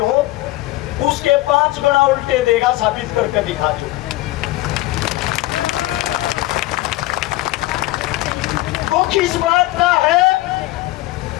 हो, उसके 5 गुना उल्टे देगा, साबित करके दिखा दो। तो किस बात का है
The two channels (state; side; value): quieter; right; 18.1 dB